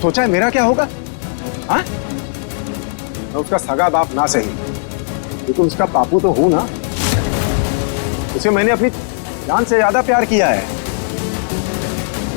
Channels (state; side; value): silent; right; 68 dB below the other